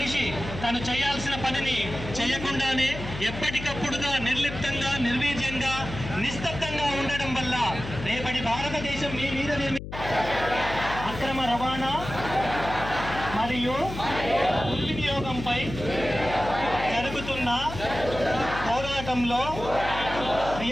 తను చేయాల్సిన పనిని చేయకుండానే ఎప్పటికప్పుడుగా నిర్లిప్తంగా నిర్వీర్యంగా నిస్తబ్దంగా ఉండడం వల్ల రేపటి భారతదేశం మీ మీద అక్రమ రవాణా మరియు దుర్వినియోగంపై జరుగుతున్న పోరాటంలో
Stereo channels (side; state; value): left; noise; hum, 9 dB below the sound